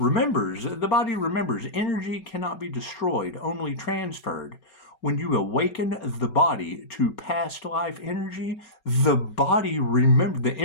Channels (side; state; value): right; late; 5.3 ms